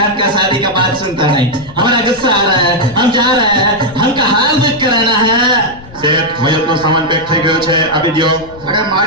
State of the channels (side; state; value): left; noise; rumble, 19 dB below the sound